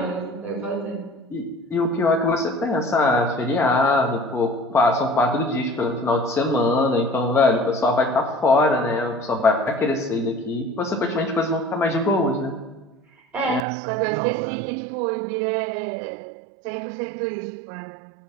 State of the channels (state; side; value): drops out; left; at 13.7 s